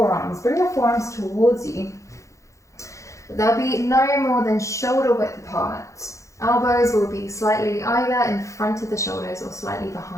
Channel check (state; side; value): late; right; 0.15 ms